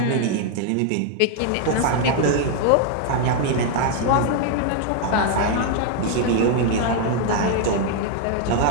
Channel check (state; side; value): different; both; correlation 0.00